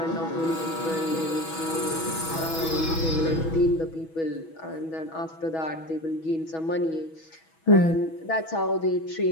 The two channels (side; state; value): right; late; 6.2 ms